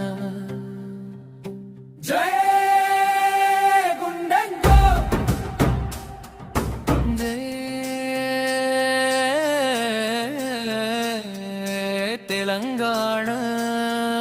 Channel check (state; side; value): identical; both; correlation 1.00